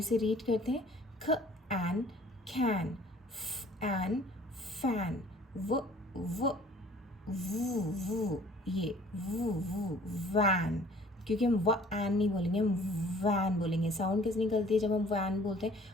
रीड करते हैं। ख एन कैन, फ एन फैन, व वू ये वू वैन। क्योंकि हम व एन नहीं बोलेंगे, हम वैन बोलेंगे। साउंड कैसे निकलती है जब हम वैन बोलते हैं?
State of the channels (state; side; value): normal; both; correlation 0.53